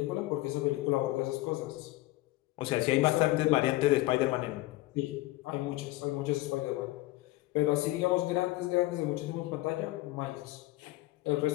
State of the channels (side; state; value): right; quieter; 18.5 dB